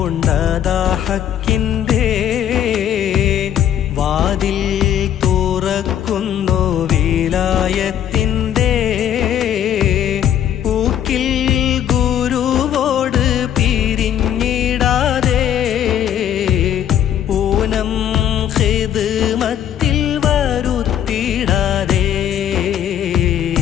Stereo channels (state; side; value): quieter; right; 10.2 dB